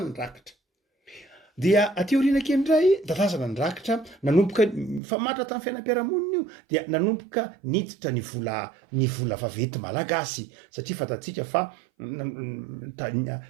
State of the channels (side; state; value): left; drops out; at 5.0 s